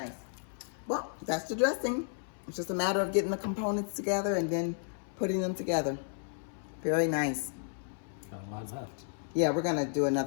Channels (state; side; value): silent; right; 56 dB below the other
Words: Well, that's the dressing. It's just a matter of getting the components together and then putting them together. Very nice. Got a lot left. Yeah, we're gonna do